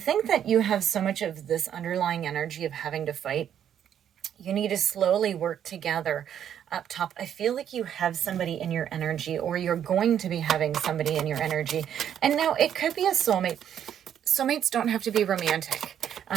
that you have so much of this underlying energy of having to fight. You need to slowly work together. Up top, I feel like you have somebody in your energy, or you're going to be having somebody in your energy. And now it could be a soulmate. Soulmates don't have to be romantic.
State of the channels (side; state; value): left; quieter; 9.5 dB